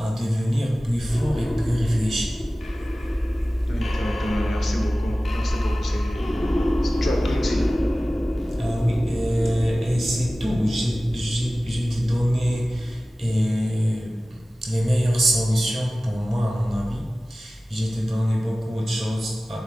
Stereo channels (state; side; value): normal; both; correlation 0.97